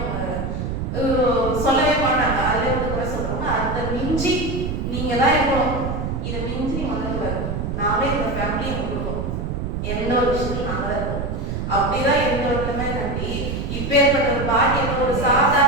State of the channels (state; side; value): noise; right; rumble, 3 dB below the sound